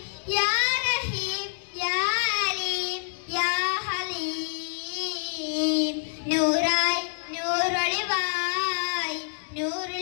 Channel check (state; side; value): silent; right; 60 dB below the other